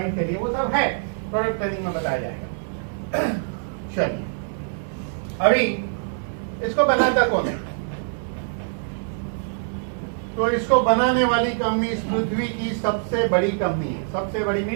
के लिए, वो सब है, प्रोडक्ट ट्रेनिंग में बताया जाएगा। चलिए अभी इसको बनाता कौन है? तो इसको बनाने वाली कंपनी इस पृथ्वी की सबसे बड़ी कंपनी है। सबसे बड़ी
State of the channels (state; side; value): silent; left; 59 dB below the other